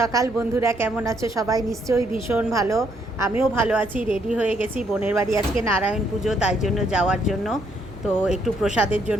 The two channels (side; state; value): both; normal; correlation 0.72